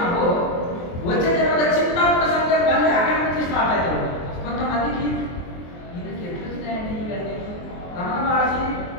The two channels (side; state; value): right; late; 23 ms